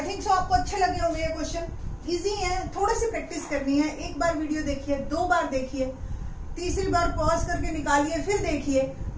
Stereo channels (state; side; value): identical; both; correlation 1.00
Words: थिंक सो आपको अच्छे लगे होंगे ये क्वेश्चन. इजी है, थोड़ी सी प्रैक्टिस करनी है. एक बार वीडियो देखिए, 2 बार देखिए, तीसरी बार पॉज करके निकालिए, फिर देखिए,